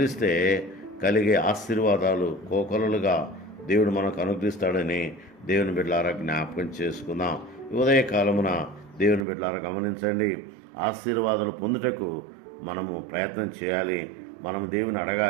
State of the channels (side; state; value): left; drops out; at 9.2 s